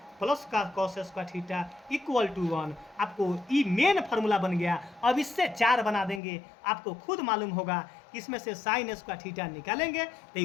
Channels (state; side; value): drops out; right; at 6.2 s